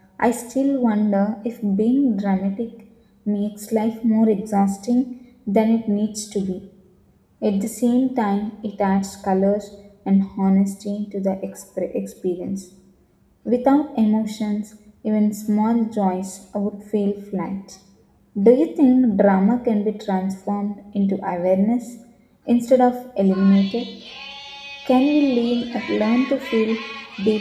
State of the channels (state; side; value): identical; both; correlation 1.00